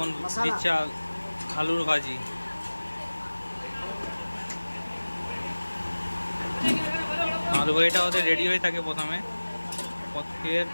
দিচ্ছে আলুর ভাজি। আলু ভাজিটা ওদের রেডি হয়ে থাকে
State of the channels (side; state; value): both; inverted; correlation -1.00